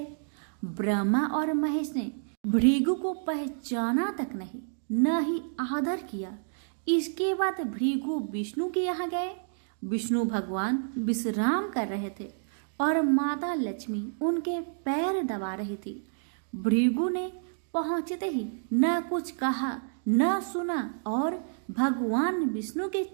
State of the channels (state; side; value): silent; left; digital silence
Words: ब्रह्मा और महेश ने भृगु को पहचाना तक नहीं, न ही आदर किया। इसके बाद भृगु विष्णु के यहाँ गए। विष्णु भगवान विश्राम कर रहे थे और माता लक्ष्मी उनके पैर दबा रही थी। भृगु ने पहुंचते ही न कुछ कहा न सुना और भगवान विष्णु के